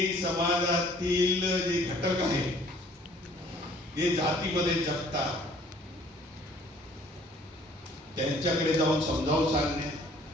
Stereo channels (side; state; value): both; normal; correlation 0.56